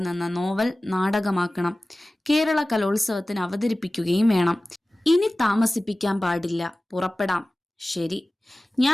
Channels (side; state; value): both; normal; correlation 0.97